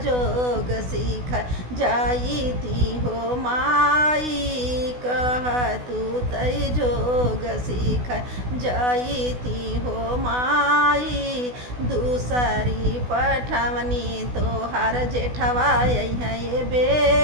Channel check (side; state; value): left; late; 16 ms